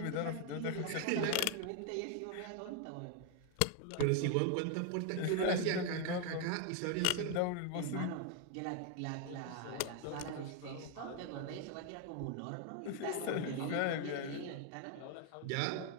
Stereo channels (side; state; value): both; different; correlation 0.01